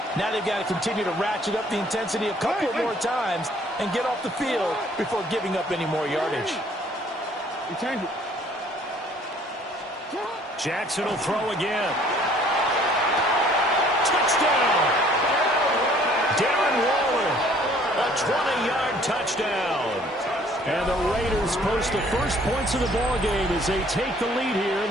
Now they've got to continue to ratchet up the intensity a couple of more times and get off the field before giving up any more yardage. Jackson will throw again. Touchdown! Darren Waller, a 20-yard touchdown. And the Raiders post the first points of the ballgame as they take the lead here in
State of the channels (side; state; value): both; normal; correlation 0.57